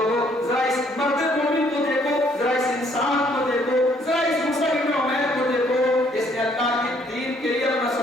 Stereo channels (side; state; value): both; normal; correlation 0.65